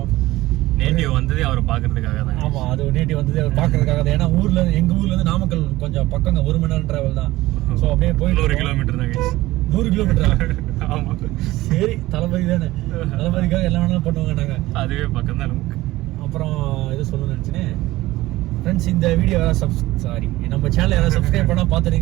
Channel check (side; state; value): left; quieter; 17.7 dB